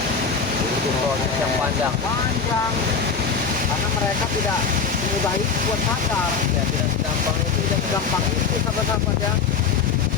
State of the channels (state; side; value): quieter; right; 5.7 dB